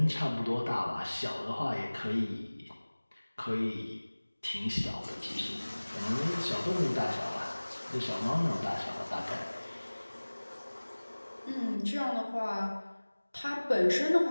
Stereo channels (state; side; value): inverted; both; correlation -1.00